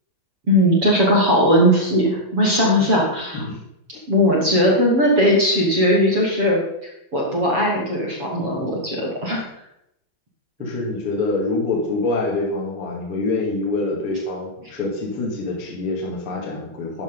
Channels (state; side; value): late; left; 7.2 ms